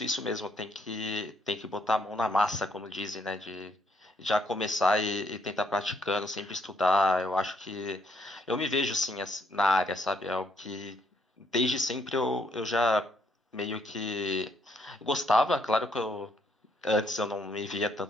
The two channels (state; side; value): normal; both; correlation 0.71